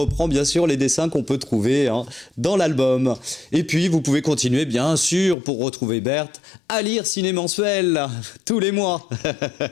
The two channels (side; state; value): right; drops out; at 5.4 s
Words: bien sûr les dessins qu'on peut trouver dans l'album. Et puis vous pouvez continuer bien sûr, pour retrouver Berthe, à lire Ciné Mensuel tous les mois.